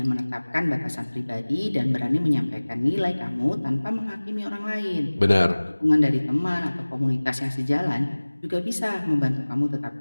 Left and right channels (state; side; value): inverted; both; correlation -1.00